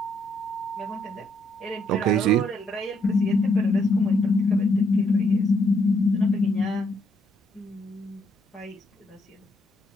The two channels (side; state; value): both; normal; correlation 0.73